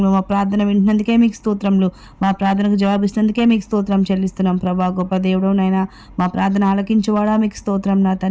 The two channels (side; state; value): both; identical; correlation 1.00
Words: మా ప్రార్థన వింటున్నందుకే మీకు స్తోత్రములు, మా ప్రార్థనకు జవాబిస్తున్నందుకే మీకు స్తోత్రం చెల్లిస్తున్నాం ప్రభా. గొప్ప దేవుడు నాయన, మా ప్రార్థన ఆలకించువాడా మీకు స్తోత్రం నా